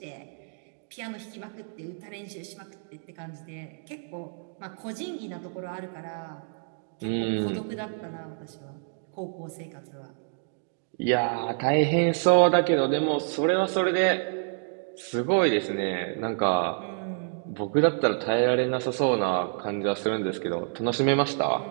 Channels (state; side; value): silent; left; digital silence